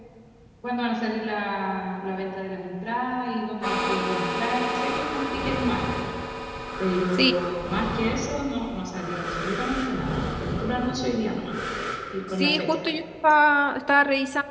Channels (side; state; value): both; identical; correlation 1.00